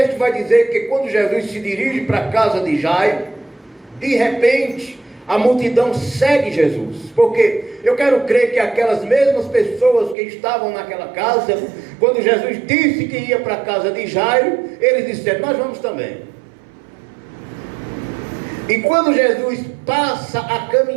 vai dizer que quando Jesus se dirige para a casa de Jairo, de repente a multidão segue Jesus. Porque eu quero crer que aquelas mesmas pessoas que estavam naquela casa, quando Jesus disse que ia para a casa de Jairo, eles disseram: nós vamos também. E quando Jesus passa a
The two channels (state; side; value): drops out; left; at 10.2 s